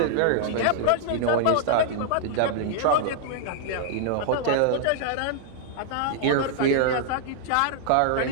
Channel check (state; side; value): different; both; correlation -0.01